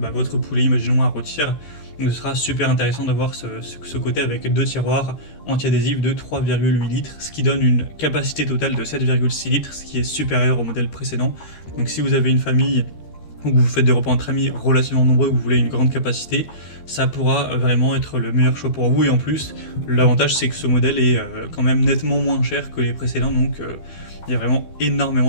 poulet, imaginons à rôtir. Donc ce sera super intéressant d'avoir ce côté avec deux tiroirs anti-adhésifs de 3,8 litres, ce qui donne une capacité totale de 7,6 litres, ce qui est supérieur au modèle précédent. Donc si vous avez une famille ou que vous faites des repas entre amis relativement nombreux, vous voulez une grande capacité, ça pourra vraiment être le meilleur choix pour vous. Et en plus, l'avantage c'est que ce modèle est quand même nettement moins cher que les précédents, donc il y a vraiment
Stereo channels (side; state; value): right; late; 13 ms